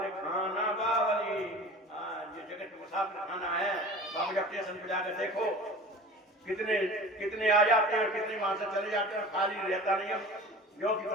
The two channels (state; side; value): normal; both; correlation 0.39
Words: खाना बावली, ये जगत मुसाफिर खाना है। बाबू जब स्टेशन पे जाकर देखो कितने आ जाते हैं और कितने वहां से चले जाते हैं, खाली रहता नहीं है, जो कि